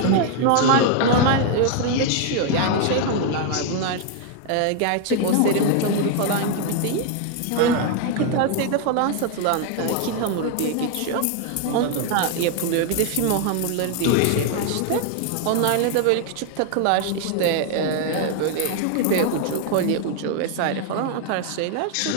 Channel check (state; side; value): different; both; correlation 0.00